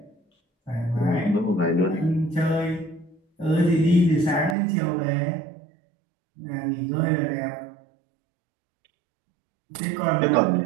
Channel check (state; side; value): drops out; left; at 4.5 s